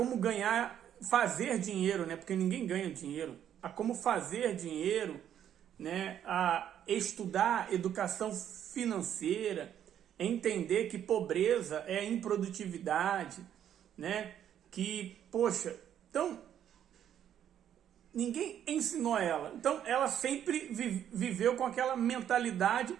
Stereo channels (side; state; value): left; quieter; 10.0 dB